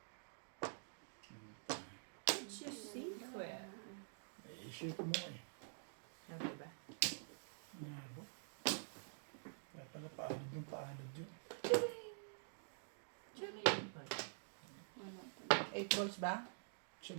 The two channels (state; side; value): silent; left; digital silence